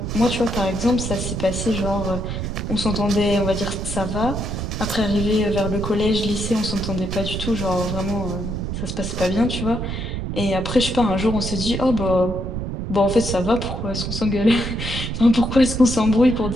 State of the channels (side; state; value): right; noise; rumble, 4 dB below the sound